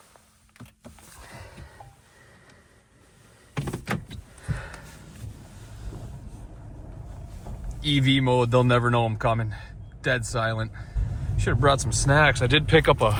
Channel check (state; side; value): identical; both; correlation 1.00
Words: EV mode, they'll never know I'm coming. Dead silent. Should have brought some snacks. I did pick up